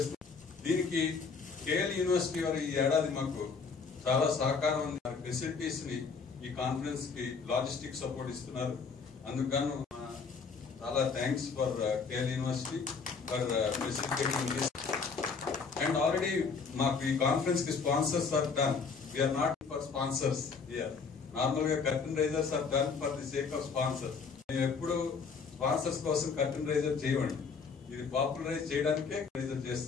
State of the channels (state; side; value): quieter; right; 5.2 dB